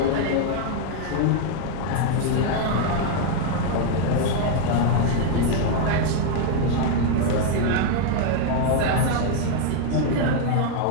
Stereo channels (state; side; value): different; both; correlation 0.00